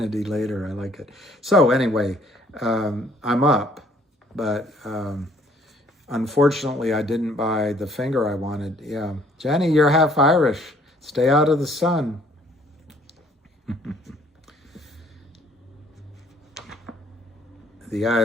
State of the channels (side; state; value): both; normal; correlation 0.60